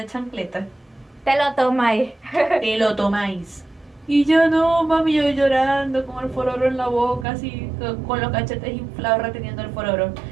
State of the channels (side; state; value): left; drops out; at 7.2 s